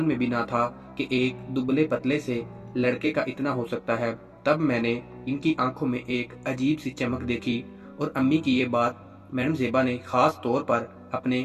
में भी ना था कि एक दुबले पतले से लड़के का इतना हो सकता है। तब मैंने इनकी आंखों में एक अजीब सी चमक देखी। और अम्मी की ये बात मैडम ज़ेबा ने खास तौर पर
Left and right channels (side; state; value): both; identical; correlation 1.00